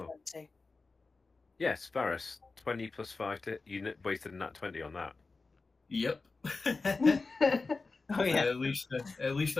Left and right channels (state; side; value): quieter; right; 3.9 dB